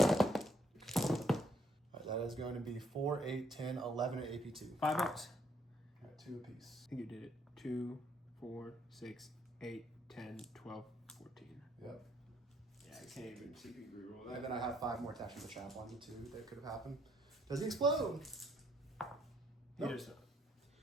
right, that is going to be 4, 8, 10, 11 at AP2. 5-ups. All right, 2 apiece. I think you did it. 2, 4, 6, 8, 10, 12, 14. Yep. Yeah, I can't even CP reroll And that. then I have 5 more attacks from the chaplain too that could have happened. Does he explode? He does not.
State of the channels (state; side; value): normal; both; correlation 0.70